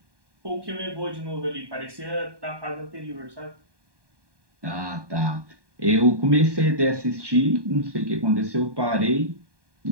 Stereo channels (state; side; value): late; left; 1.2 ms